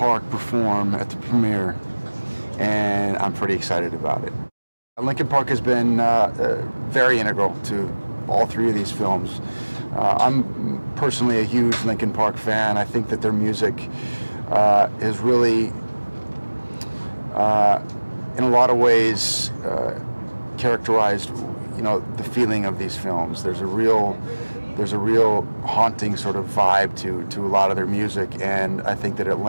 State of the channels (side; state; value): both; inverted; correlation -1.00